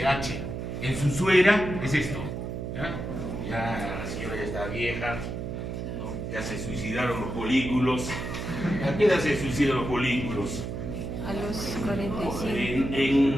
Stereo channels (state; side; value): noise; right; hum, 5 dB below the sound